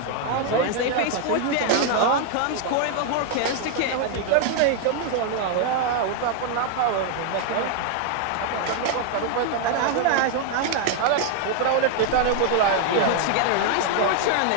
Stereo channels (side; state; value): both; different; correlation 0.00